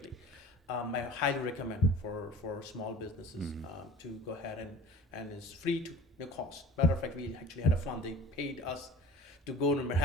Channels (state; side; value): normal; both; correlation 0.43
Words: I highly recommend for small businesses to go ahead, and it's free to no cost. Matter of fact, we actually had a fund. They paid us to go to